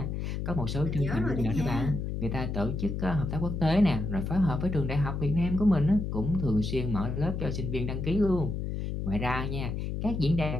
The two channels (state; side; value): noise; left; hum, 3 dB below the sound